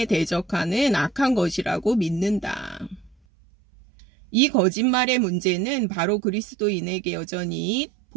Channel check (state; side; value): drops out; left; at 3.2 s